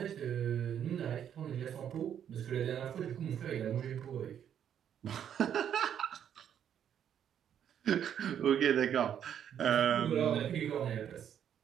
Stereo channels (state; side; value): quieter; left; 9.2 dB